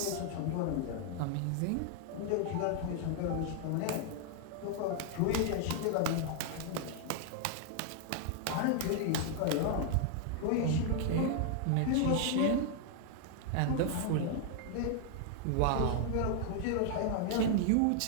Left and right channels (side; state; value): both; different; correlation 0.00